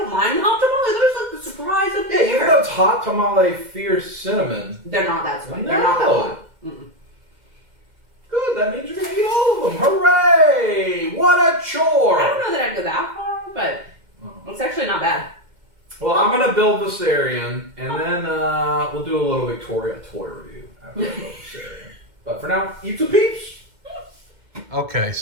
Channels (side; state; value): left; late; 2.0 ms